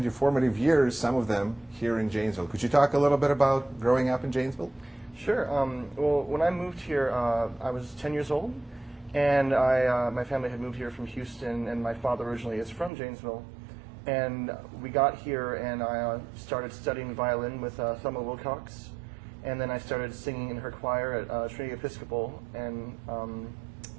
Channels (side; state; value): left; drops out; at 12.9 s